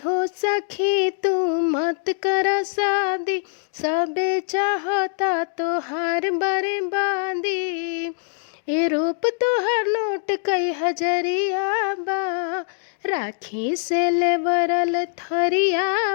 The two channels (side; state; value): right; silent; digital silence